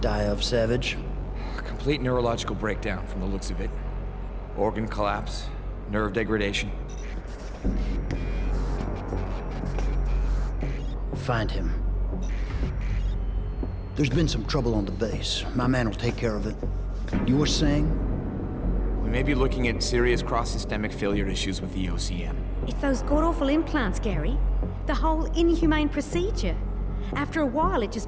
of, Savage? Complete neurological breakdown from the looks of it. Organ collapse, nerve degradation. Find him. There's been some trouble on the base. My man will take care of it. You were saying? We may be looking at serious cross-systemic failure issues with the OCM. It's those god-awful implants, Gary. The whole inhumane procedure. After a while, it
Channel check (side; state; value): both; identical; correlation 1.00